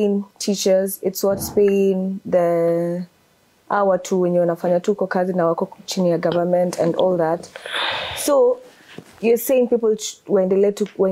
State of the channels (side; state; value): both; identical; correlation 1.00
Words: teachers, it's what's paying the hour tu wenye wanafanya tu kwa kazi na wako chini ya government and all that. So you're saying people waendelee tu